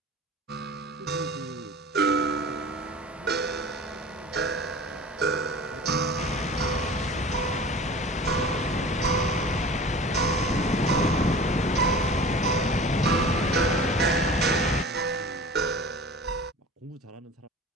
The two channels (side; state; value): both; normal; correlation 0.39